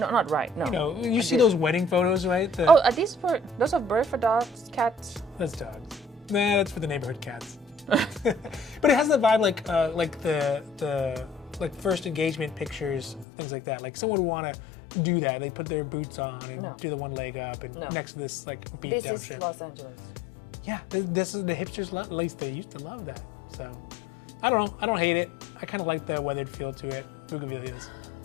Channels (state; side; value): drops out; right; at 13.2 s